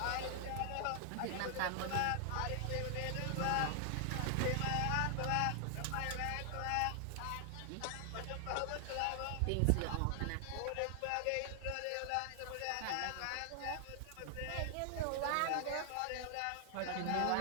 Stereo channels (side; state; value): both; different; correlation 0.00